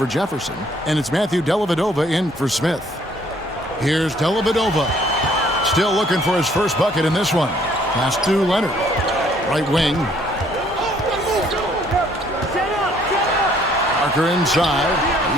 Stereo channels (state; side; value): normal; both; correlation 0.62